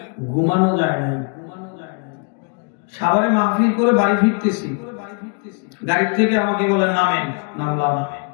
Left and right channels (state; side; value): quieter; right; 36.7 dB